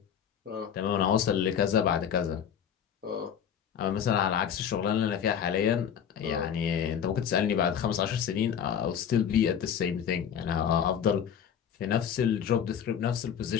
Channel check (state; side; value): quieter; right; 8.4 dB